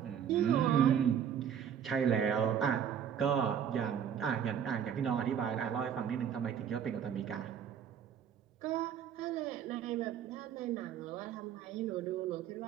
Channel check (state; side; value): quieter; left; 8.5 dB